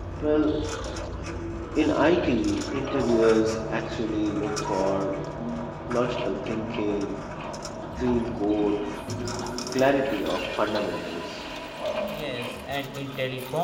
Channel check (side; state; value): both; identical; correlation 1.00